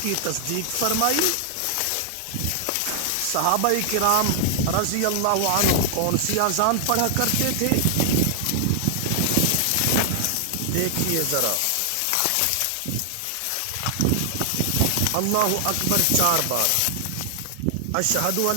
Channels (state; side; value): different; both; correlation 0.00